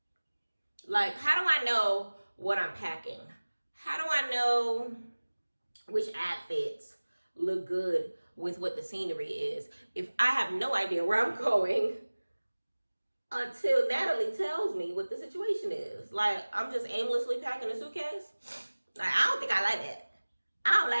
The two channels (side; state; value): both; inverted; correlation -1.00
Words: Like, how do I know what I'm packing? How do I know which outfits look good with what the scenery is if I have no idea where I'm going until Natalie tells me what the situation is? Like, I'm just aimlessly packing a suitcase. Like, I don't think I like that. I don't